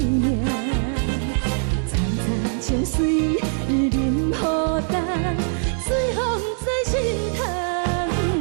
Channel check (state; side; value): silent; left; digital silence